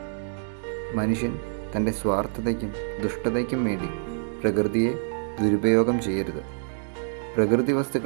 മനുഷ്യൻ തൻ്റെ സ്വാർത്ഥതയ്ക്കും ദുഷ്ടതയ്ക്കും വേണ്ടി പ്രകൃതിയെ ദുരുപയോഗം ചെയ്യരുത്. പ്രകൃതി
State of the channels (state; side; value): silent; left; 61 dB below the other